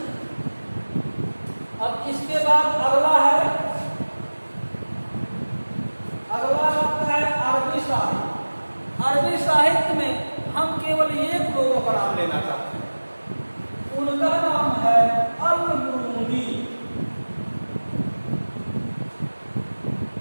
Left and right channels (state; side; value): inverted; both; correlation -1.00